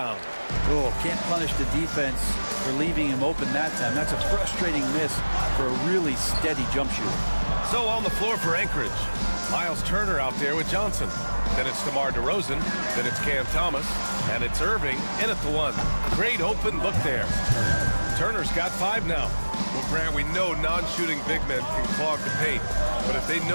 Oh, can't punish the defense for leaving him open that time. That's a frustrating miss for a really steady jump shooter. So on the floor for Anchorage, Miles Turner out there with Johnson. Then it's DeMar DeRozan. Then it's Cam Thomas. And it's Irving in at the one. Great open look there. Turner's got 5 now. Well, Grant, we know non-shooting big men can clog the paint. But if they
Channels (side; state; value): both; inverted; correlation -1.00